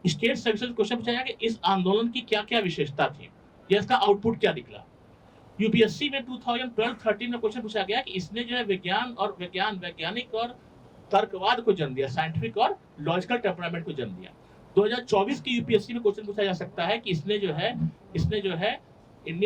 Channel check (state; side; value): identical; both; correlation 1.00